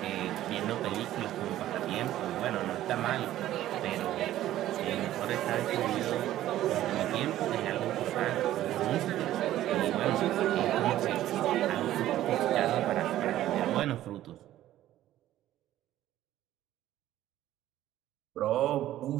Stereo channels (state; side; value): quieter; left; 13.5 dB